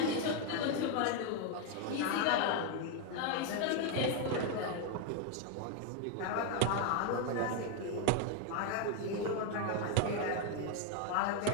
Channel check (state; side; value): different; both; correlation 0.01